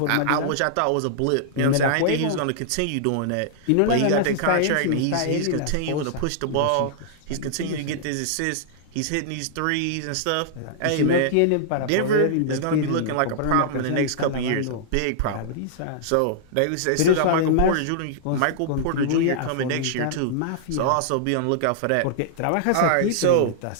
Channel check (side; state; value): both; different; correlation -0.01